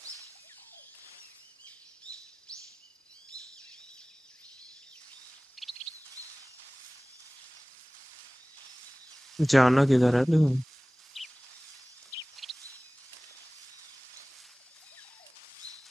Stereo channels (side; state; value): both; normal; correlation 0.98